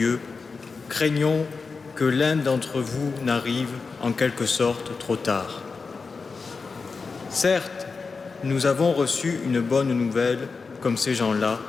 craignons que l'un d'entre vous n'arrive en quelque sorte trop tard. Certes, nous avons reçu une bonne nouvelle comme ces gens-là,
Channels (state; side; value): quieter; right; 4.6 dB